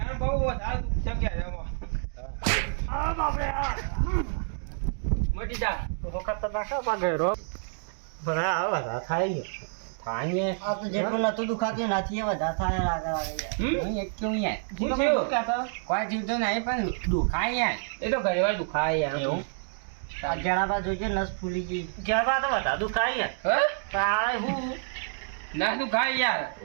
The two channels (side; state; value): left; silent; digital silence